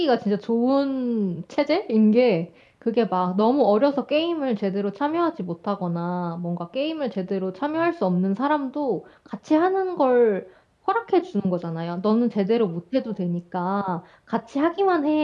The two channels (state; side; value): identical; both; correlation 1.00